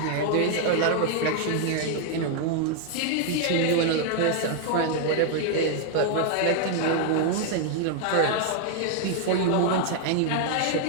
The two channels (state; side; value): different; both; correlation 0.00